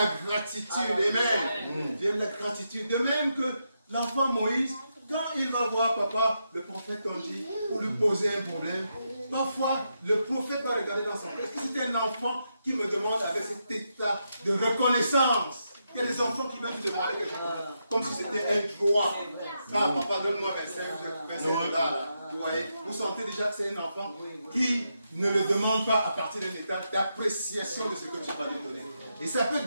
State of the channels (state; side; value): inverted; both; correlation -0.84